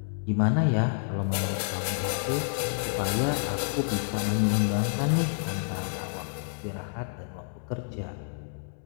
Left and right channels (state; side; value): silent; right; 59 dB below the other